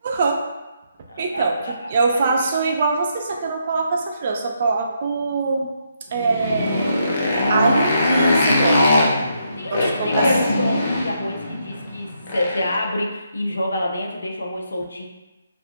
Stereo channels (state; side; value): inverted; both; correlation -0.77